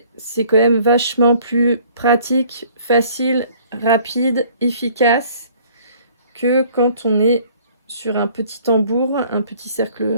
c'est quand même vachement plus pratique, facile, rapide, efficace que quand on est sur un petit tambour, un petit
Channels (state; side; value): inverted; both; correlation -0.56